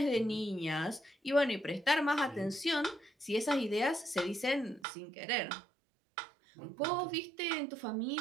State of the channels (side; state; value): left; drops out; at 4.9 s